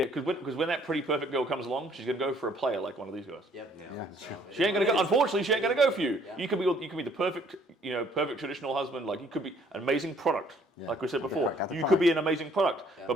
because when that pretty perfect girl comes along, she's gonna go for a player like one of these guys. Yep. Yeah. So, she ain't gonna go. Unfortunately, she ain't gonna go for you. Yeah. You could be the perfect, perfect traditional husband. Like you could be an amazing product, like we said before. You could be an amazing product, but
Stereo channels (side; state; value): both; normal; correlation 0.62